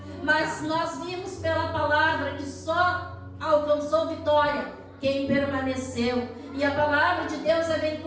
Mas nós vimos pela palavra que só alcançou vitória quem permaneceu. E a palavra de Deus é bem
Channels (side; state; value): both; identical; correlation 1.00